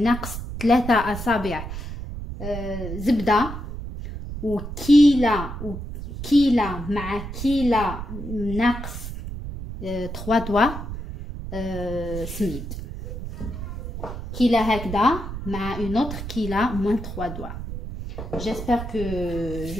3 أصابع زبدة وكيلة مع كيلة ناقص 3 دوا سميد كيلة هكذا مع اون اوتر كيلة موان 3 دوا. J'espère que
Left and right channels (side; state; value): right; noise; rumble, 8 dB below the sound